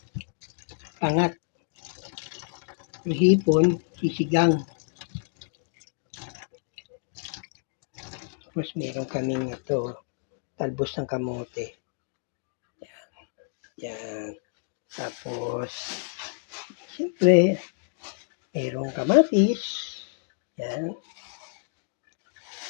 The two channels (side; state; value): right; silent; digital silence